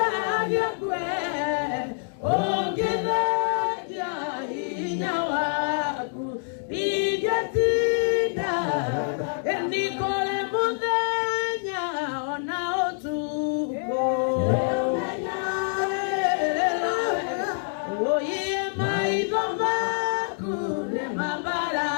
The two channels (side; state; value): right; silent; digital silence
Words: kwe ũngĩthengia hinya waku ingĩtinda ni kũrĩ mũthenya ona ũtukũ ũiye maitho maku nĩ